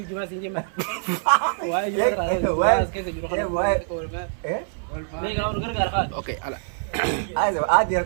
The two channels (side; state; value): left; silent; 62 dB below the other